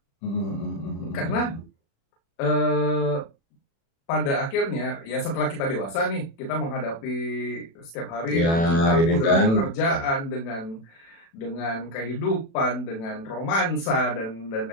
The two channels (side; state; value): right; late; 36 ms